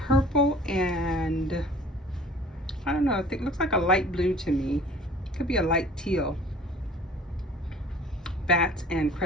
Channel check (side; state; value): both; normal; correlation 0.48